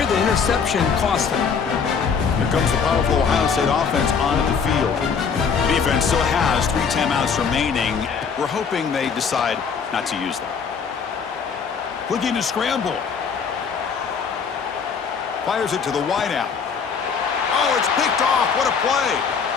the interception cost them. Here comes the powerful Ohio State offense onto the field. The defense still has 3 timeouts remaining. We're hoping they decide not to use them. Looking to scramble. Fires it to the wideout. Oh, it's picked off. What a play.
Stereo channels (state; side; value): quieter; right; 6.1 dB